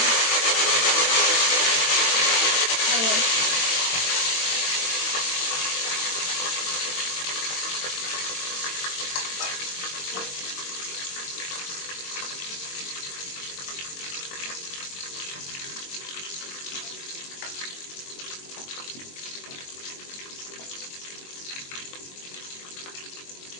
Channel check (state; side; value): late; right; 22 ms